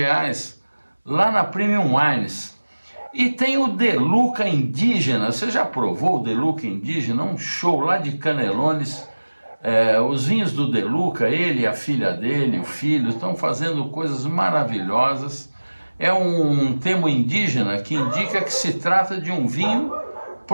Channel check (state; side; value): inverted; both; correlation -1.00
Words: lá na Premium Wines. E tem o De Luca Indígena. Você já provou o De Luca Indígena? Um show lá de Canelones. Os vinhos do De Luca, ele, a filha dele, o filho, estão fazendo coisas maravilhosas. É um termo indígena que indica que se trata de um vinho